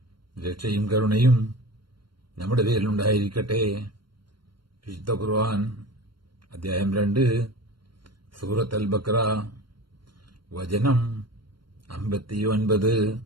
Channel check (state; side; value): late; left; 0.72 ms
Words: രക്ഷയും കരുണയും നമ്മുടെ പേരിലുണ്ടായിരിക്കട്ടെ. വിശുദ്ധ ഖുർആൻ അധ്യായം 2 സൂറത്ത് അൽ-ബഖറ വചനം 59.